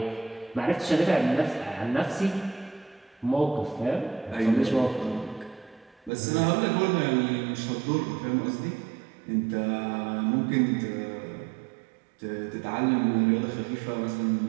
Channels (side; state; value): left; drops out; at 6.1 s